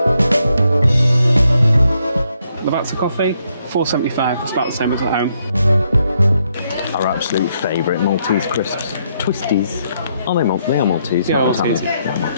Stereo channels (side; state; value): both; inverted; correlation -0.76